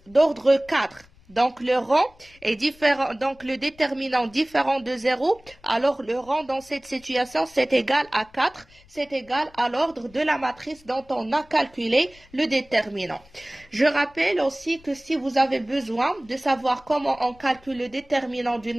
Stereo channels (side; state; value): left; noise; rumble, 27 dB below the sound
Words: d'ordre 4. Donc, le rang est différent, donc le déterminant différent de 0, alors le rang dans cette situation, c'est égal à 4, c'est égal à l'ordre de la matrice dont on a calculé le déterminant. Je rappelle aussi que si vous avez besoin de savoir comment on calcule le déterminant d'une